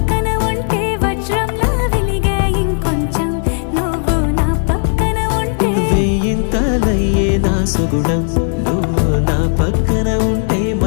ఉంటే వజ్రంలా వెలిగే ఇంకొంచెం నువ్వు నా పక్కన ఉంటే వెయ్యింతలయ్యేనా సుగుణం నువ్వు నా పక్కన ఉంటే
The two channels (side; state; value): right; silent; 63 dB below the other